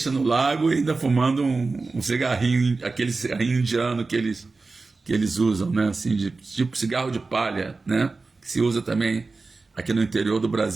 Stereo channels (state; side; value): quieter; left; 3.9 dB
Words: no lago e ainda fumando um cigarrinho, aquele cigarrinho indiano que eles usam, né? Assim, tipo cigarro de palha, né? Que se usa também aqui no interior do